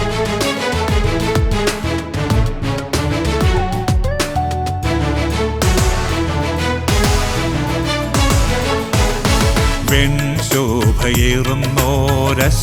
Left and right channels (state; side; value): identical; both; correlation 1.00